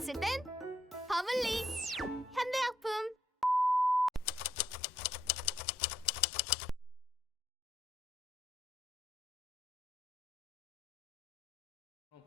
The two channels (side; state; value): both; normal; correlation 0.74